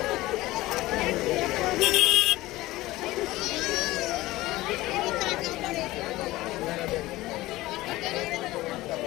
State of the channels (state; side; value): quieter; right; 18.2 dB